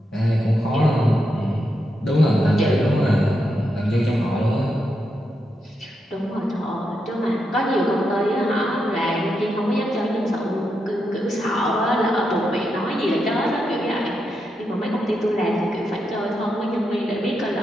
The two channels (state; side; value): normal; both; correlation 0.84